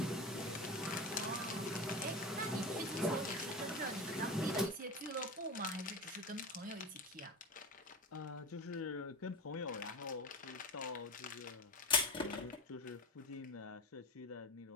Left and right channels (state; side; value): normal; both; correlation 0.27